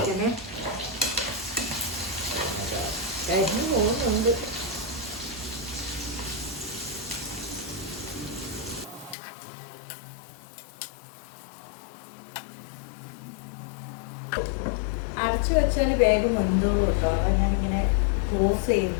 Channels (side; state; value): right; drops out; at 9.2 s